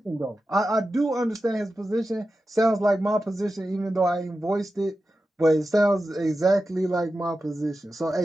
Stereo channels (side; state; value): both; normal; correlation 0.92